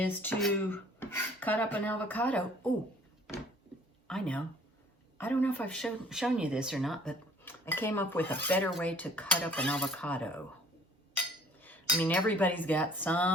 to cut up an avocado. Oh, I know. I don't know if I've shown you this or not, but I came up with a better way to cut up an avocado. I mean, everybody's got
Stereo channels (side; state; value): both; normal; correlation 0.54